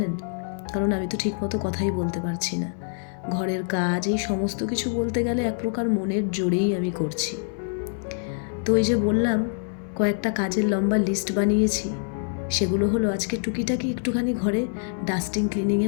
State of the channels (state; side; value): silent; right; 62 dB below the other